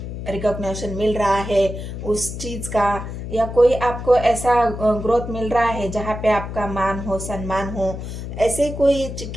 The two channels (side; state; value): left; noise; hum, 8 dB below the sound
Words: रिकॉग्निशन मिल रहा है उस चीज का, या कोई आपको ऐसा ग्रोथ मिल रहा है जहाँ पे आपका मान हो, सम्मान हो, ऐसे कोई